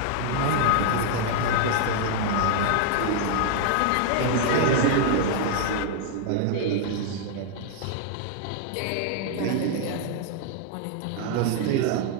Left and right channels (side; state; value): both; different; correlation 0.00